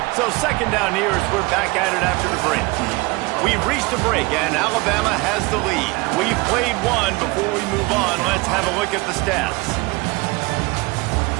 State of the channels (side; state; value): left; quieter; 24.5 dB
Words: So second down here as we're back at it after the break. We've reached a break, and Alabama has the lead. We've played one. Before we move on, let's have a look at the stats.